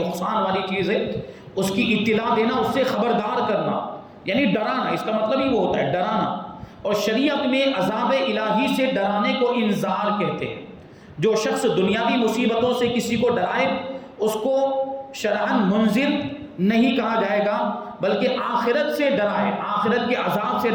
والی چیز ہے، اس کی اطلاع دینا، اس سے خبردار کرنا، یعنی ڈرانا۔ اس کا مطلب ہی وہ ہوتا ہے، ڈرانا۔ اور شریعت میں عذاب الہی سے ڈرانے کو انذار کہتے ہیں۔ جو شخص دنیاوی مصیبتوں سے کسی کو ڈرائے اس کو شرعاً منذر نہیں کہا جائے گا، بلکہ آخرت سے ڈرائے، آخرت کے عذاب سے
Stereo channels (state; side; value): identical; both; correlation 1.00